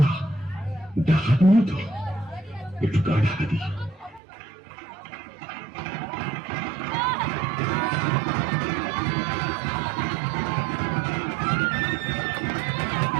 ডাকাত মতো। একটু গা ঢাকা দিই।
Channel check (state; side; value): drops out; left; at 4.2 s